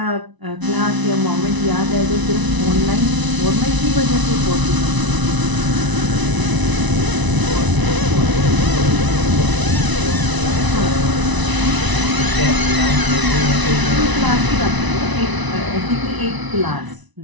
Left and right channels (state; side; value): late; left; 1.0 ms